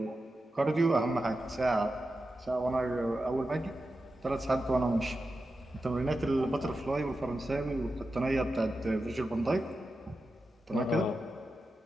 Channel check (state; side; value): normal; both; correlation 0.90